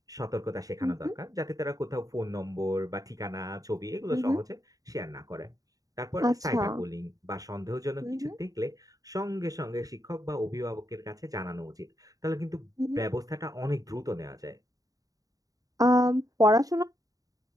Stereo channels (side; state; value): left; late; 0.17 ms